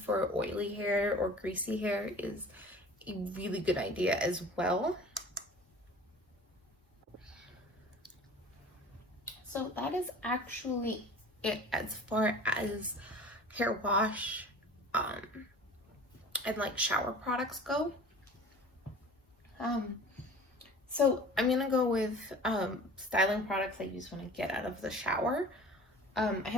oily hair or greasy hair is a really good idea as well. So that is actually it as far as hair wash and like shower products go. So I'm gonna go with styling products I use when I get out of the shower. I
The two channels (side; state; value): both; normal; correlation 0.43